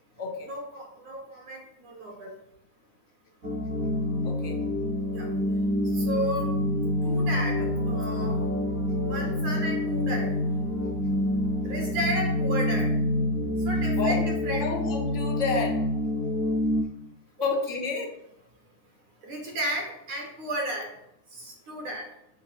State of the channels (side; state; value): left; late; 9.7 ms